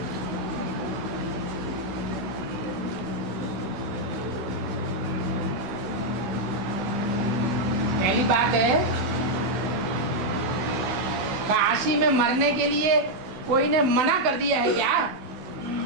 बात है, काशी में मरने के लिए कोई ने मना कर दिया है क्या?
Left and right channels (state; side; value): late; left; 15 ms